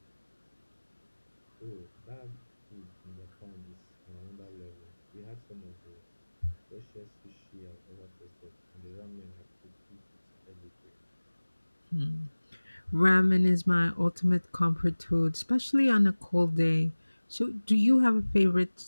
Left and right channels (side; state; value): both; inverted; correlation -1.00